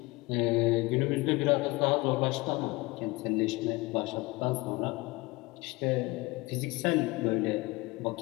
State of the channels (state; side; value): quieter; right; 22.6 dB